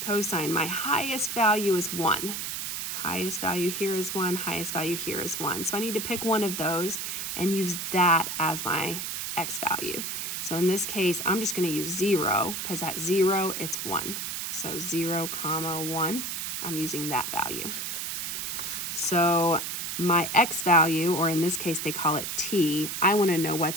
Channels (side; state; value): right; noise; hiss, 4 dB below the sound